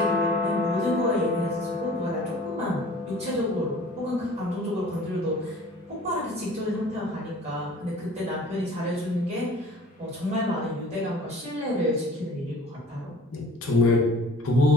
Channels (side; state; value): both; normal; correlation 0.47